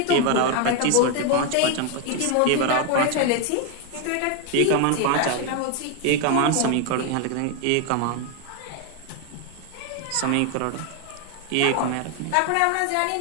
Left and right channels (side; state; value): both; different; correlation 0.01